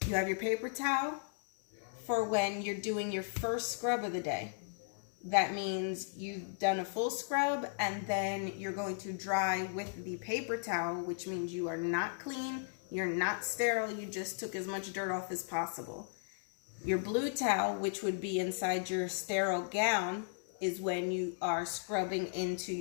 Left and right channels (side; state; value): right; silent; 54 dB below the other